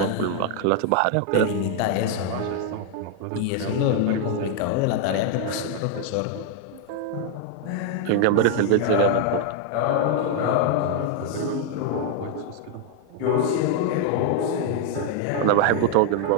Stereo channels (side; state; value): both; different; correlation 0.01